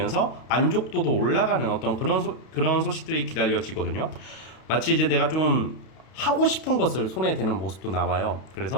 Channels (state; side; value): late; right; 32 ms